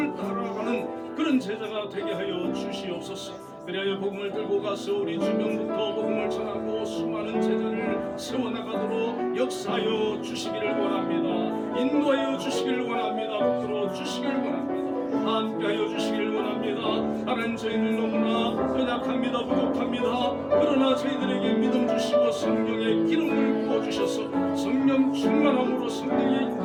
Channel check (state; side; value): identical; both; correlation 1.00